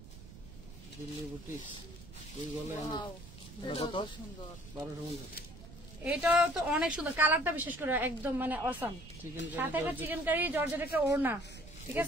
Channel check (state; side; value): noise; right; rumble, 16 dB below the sound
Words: এটা তো অনেক সুন্দর, কালারটা বিশেষ করে একদম মানে অসাম। সাথে একটা চিকেন কারি জর্জেট একটা ওড়না, ঠিক